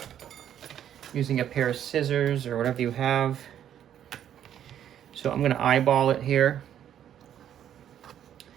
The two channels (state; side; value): quieter; left; 10.2 dB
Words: using a pair of scissors or whatever you have. So I'm going to eyeball it here.